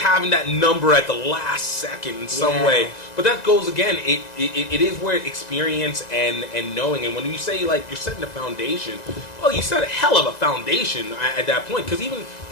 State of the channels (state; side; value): late; right; 2.0 ms